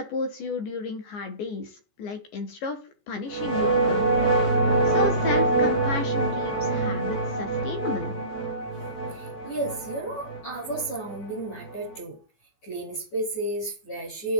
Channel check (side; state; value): right; late; 14 ms